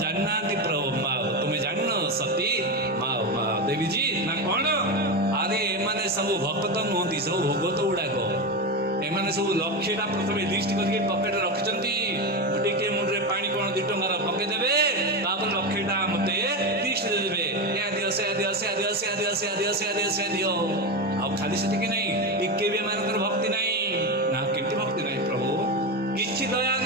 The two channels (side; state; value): both; normal; correlation 0.16